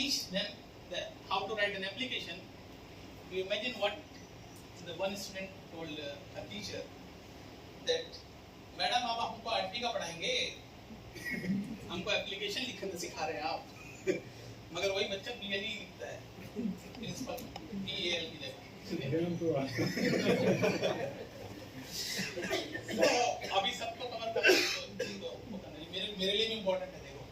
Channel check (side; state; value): both; identical; correlation 1.00